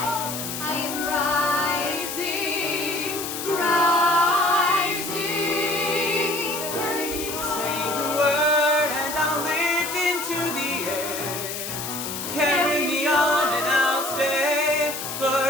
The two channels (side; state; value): left; noise; hiss, 6 dB below the sound